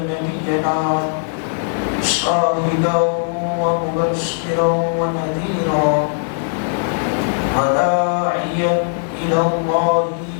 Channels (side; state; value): right; silent; 67 dB below the other